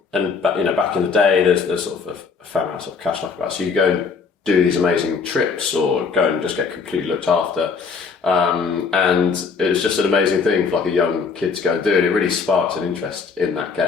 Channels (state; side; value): quieter; right; 5.3 dB